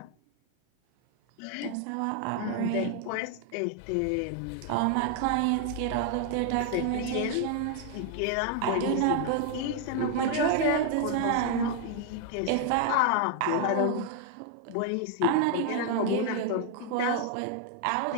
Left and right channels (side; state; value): both; different; correlation 0.00